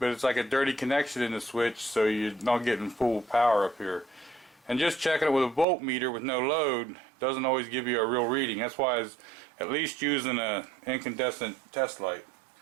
it's like a dirty connection in the switch, so you're not getting full power up here. And just checking it with a voltmeter with no load doesn't always give you a real reading. That's why it's at least using an incandescent test light.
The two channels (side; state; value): left; drops out; at 5.7 s